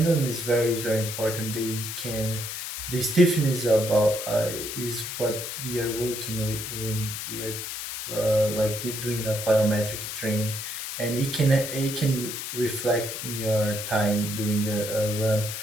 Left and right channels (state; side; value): noise; left; hiss, 6 dB below the sound